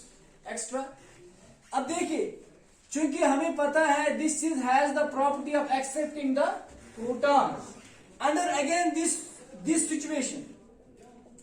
एक्स्ट्रा। अब देखिए, चूंकि हमें पता है this is has the property of accepting the proton. Under again this situation,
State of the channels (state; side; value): identical; both; correlation 1.00